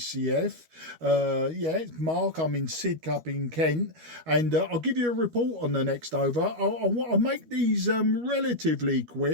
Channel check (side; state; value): left; late; 13 ms